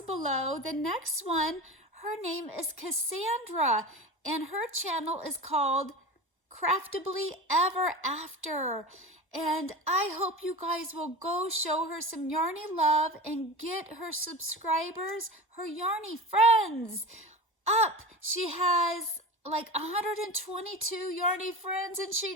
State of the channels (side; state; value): both; normal; correlation 0.29